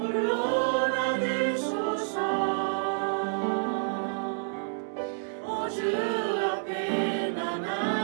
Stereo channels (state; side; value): silent; left; digital silence